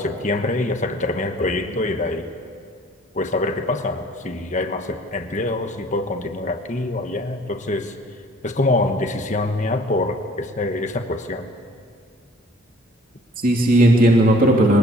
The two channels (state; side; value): normal; both; correlation 0.54